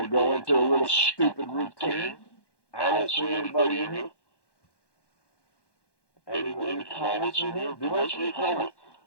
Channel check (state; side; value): late; right; 1.1 ms